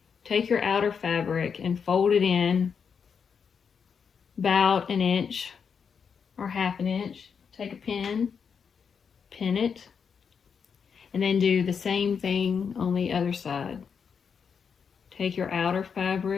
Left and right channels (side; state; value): right; quieter; 6.5 dB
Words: take your outer fabric and fold it in about 1 inch or ½ inch. Take a pin, pin it, and then do the same thing on the other side. Take your outer